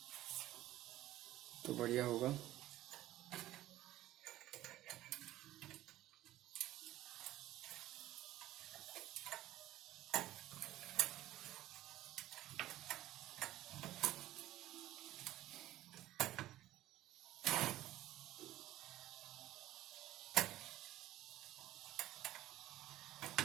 तो बढ़िया होगा।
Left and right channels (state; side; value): quieter; left; 14.9 dB